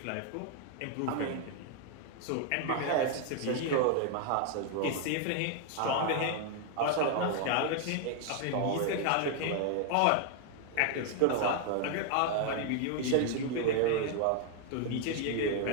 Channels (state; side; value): different; both; correlation 0.00